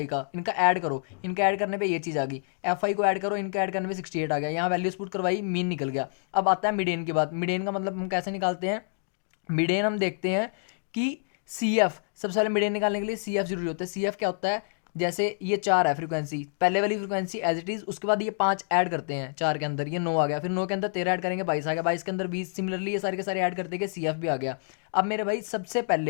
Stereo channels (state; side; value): silent; right; digital silence